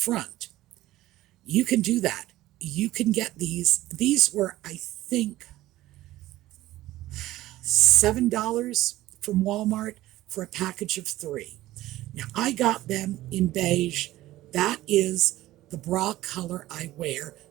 You can do that. You can get these. These were, I think, $7 from Walmart for a package of 3. Now, I got them in beige. That is the bra color I wear.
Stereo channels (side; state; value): left; quieter; 16.0 dB